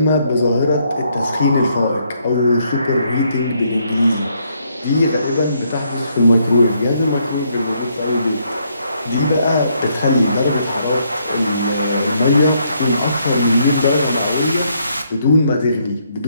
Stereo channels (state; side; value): inverted; both; correlation -0.72